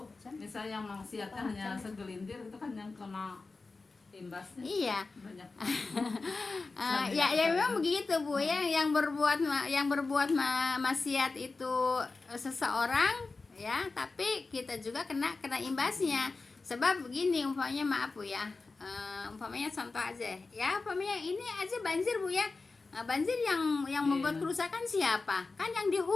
misalnya yang maksiatnya hanya segelintir, itu kan yang kena imbasnya Iya. banyak. Ya memang begitu Bu ya, yang berbuat maksiat itu seseorang ya, tapi kita juga kena imbasnya. Sebab begini, umpamanya maaf Bu ya, umpamanya contoh aja ya, umpamanya ini aja banjir Bu ya. Banjir yang membuat kerusakan siapa? Kan yang di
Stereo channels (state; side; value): quieter; right; 3.8 dB